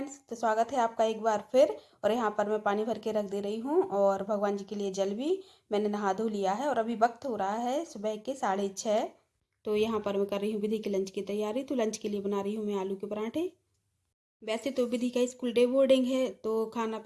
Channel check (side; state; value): both; identical; correlation 1.00